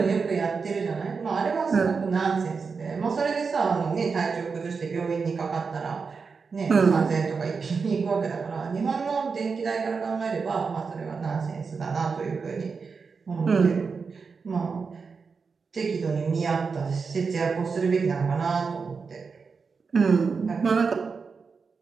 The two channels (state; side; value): quieter; left; 5.1 dB